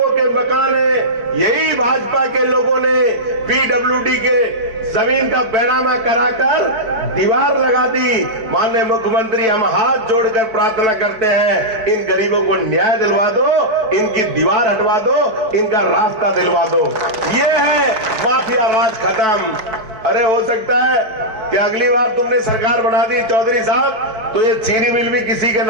के मकान हैं। यही भाजपा के लोगों ने पीडब्ल्यूडी के जमीन का बैरामा कराकर दीवार लगा दी। माननीय मुख्यमंत्री, हम हाथ जोड़कर प्रार्थना करते हैं, इन गरीबों को न्याय दिलवा दो, इनकी दीवार हटवा दो, इनका रास्ता दिलवा दो। ये है माफिया राज खत्म। अरे हो सकता है कि अगली बार तुमने सरकार बना दी चौधरी साहब, तो ये चीनी मिल भी किसी के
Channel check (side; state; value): left; late; 4.5 ms